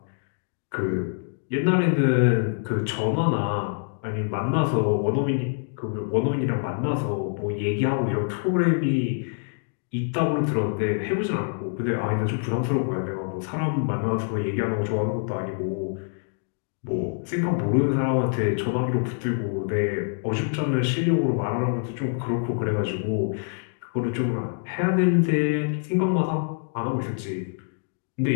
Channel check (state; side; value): silent; right; digital silence